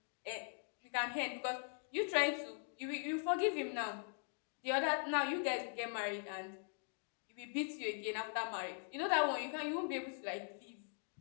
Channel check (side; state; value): right; silent; 50 dB below the other